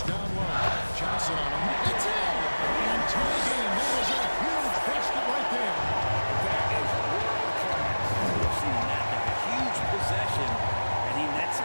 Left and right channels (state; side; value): inverted; both; correlation -1.00